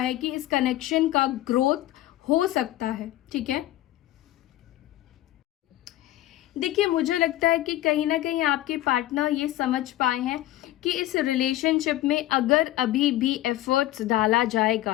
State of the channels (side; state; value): right; quieter; 15.2 dB